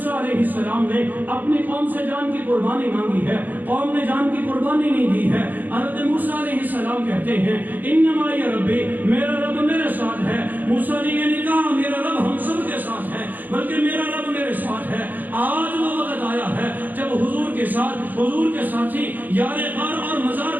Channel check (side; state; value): left; late; 0.085 ms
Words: علیہ السلام نے اپنی قوم سے جان کی قربانی مانگی ہے، قوم نے جان کی قربانی نہیں دی ہے۔ حضرت موسیٰ علیہ السلام کہتے ہیں، انما یا ربی، میرا رب میرے ساتھ ہے۔ موسیٰ نے یہ نہیں کہا میرا رب ہم سب کے ساتھ ہے، بلکہ میرا رب میرے ساتھ ہے۔ آج وہ وقت آیا ہے جب حضور کے ساتھ، حضور کے ساتھی یار غار اور مزار